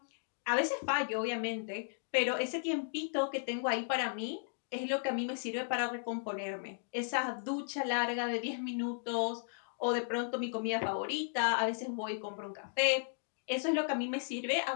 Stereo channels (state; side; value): silent; right; digital silence